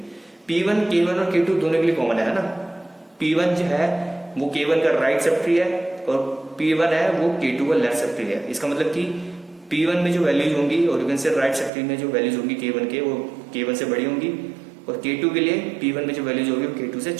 P1 K1 और K2 दोनों के लिए कॉमन है ना। P1 जो है वो K1 का राइट सब ट्री है और P1 है वो K2 का लेफ्ट सब ट्री है। इसका मतलब कि P1 में जो वैल्यूज होंगी और यू कैन से राइट सब ट्री में जो वैल्यूज होंगी K1 के, वो K1 से बड़ी होंगी और K2 के लिए P1 में जो वैल्यूज होगी वो K2 से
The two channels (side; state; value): left; drops out; at 11.7 s